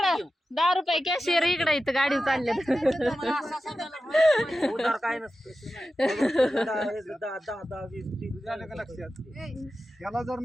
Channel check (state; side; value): normal; both; correlation 0.93